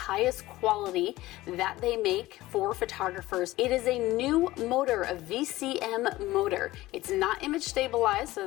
quality that they make for photographers. It is a new motor, a VCM motor. It's not image stabilized,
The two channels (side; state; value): right; quieter; 17.6 dB